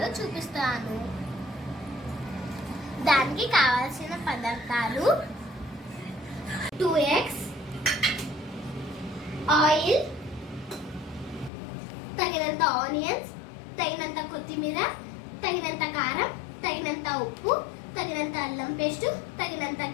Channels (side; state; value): right; drops out; at 11.5 s